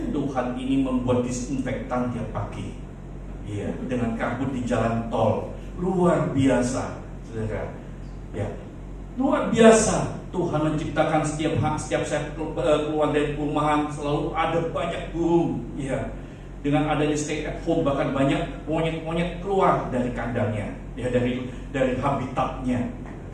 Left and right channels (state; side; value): identical; both; correlation 1.00